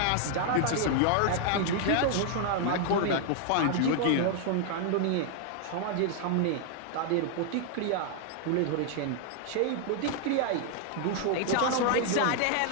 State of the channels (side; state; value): both; different; correlation 0.00